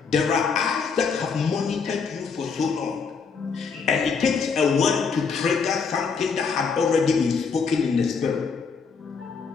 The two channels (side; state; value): right; quieter; 5.4 dB